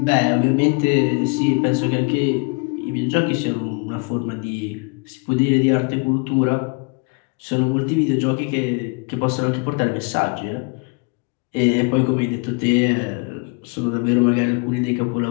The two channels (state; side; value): quieter; right; 32.4 dB